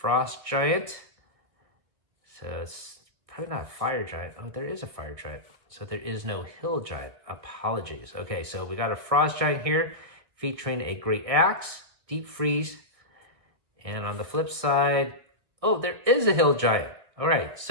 giant. So it's probably not a fire giant. Oh, there is a fire giant. So there is no hill giant. Apologies. Okay, so we got a frost giant here featuring a great axe, deep freeze. And on the flip side, oh, there is a hill giant. All right,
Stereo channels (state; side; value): late; left; 1.6 ms